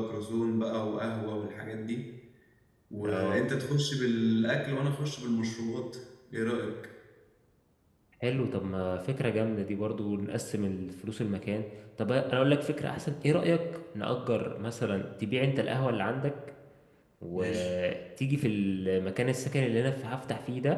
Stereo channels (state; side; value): identical; both; correlation 1.00